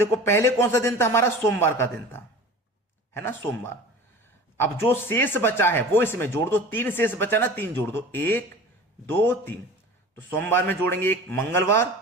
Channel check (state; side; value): normal; both; correlation 0.39